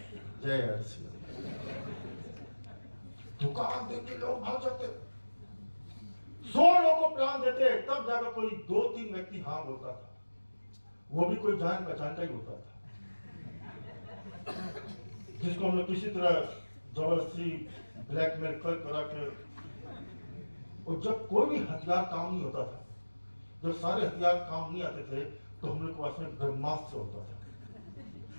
जय हर्षी। दुकान देख के लोग भाग जाते, 100 लोगों को प्लान देते, तब जाकर कोई 2-3 व्यक्ति हाँ बोलता था, वो भी कोई जान पहचान का ही होता था, जिसको हम लोग किसी तरह जबरदस्ती ब्लैकमेल करा के। और जब कोई भी हथियार काम नहीं होता था, जब सारे हथियार काम नहीं आते थे, तो हम लोग के पास में ब्रह्मास्त्र होता था,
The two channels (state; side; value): inverted; both; correlation -1.00